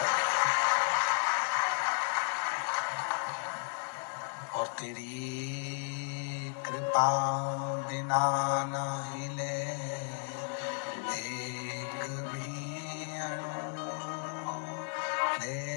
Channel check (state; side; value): silent; right; 55 dB below the other